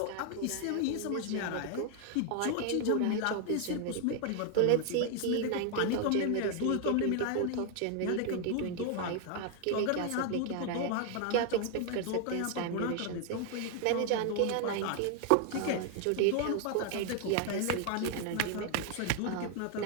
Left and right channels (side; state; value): both; different; correlation 0.00